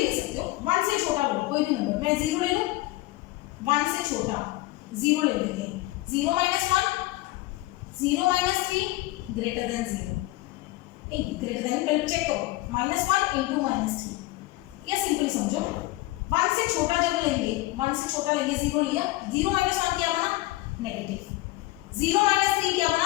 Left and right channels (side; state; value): right; quieter; 19.0 dB